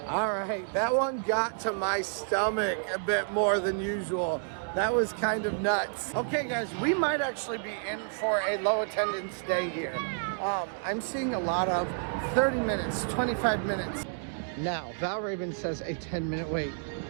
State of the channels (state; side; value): silent; left; 58 dB below the other